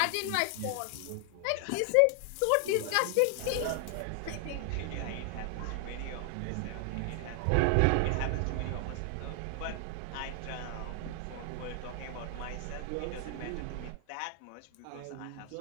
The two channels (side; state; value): both; different; correlation 0.00